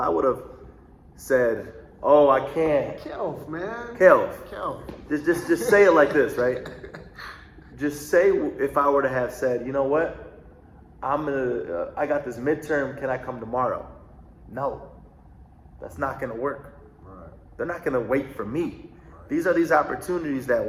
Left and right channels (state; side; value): identical; both; correlation 1.00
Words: would have said, oh, I can't. Kelv, man. Kelv, Kelv. just say it like this, right? Just say, if I were to have said, you know what, I got this midterm, can I come tomorrow? No, that's not gonna work. Right. They're not gonna wait for me. These are these opportunities that